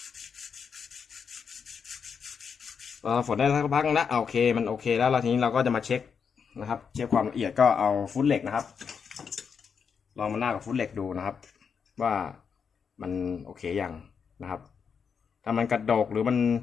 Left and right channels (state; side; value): quieter; right; 6.4 dB